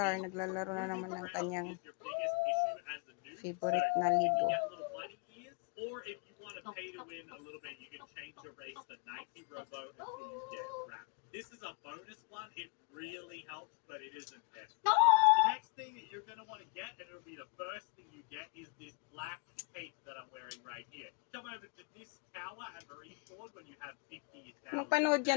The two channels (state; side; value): quieter; right; 32.6 dB